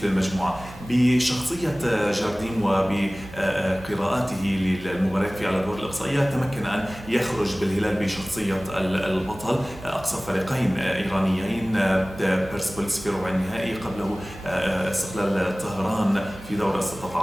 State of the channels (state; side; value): noise; right; hum, 18 dB below the sound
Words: للمجموعه. بشخصيه جاردين وبقراءاته للمباريات في الادوار الاقصائيه تمكن ان يخرج بالهلال بشخصيه البطل. اقصى فريقين ايرانيين، بيرسبوليس في ربع النهائي، قبله استقلال طهران في دور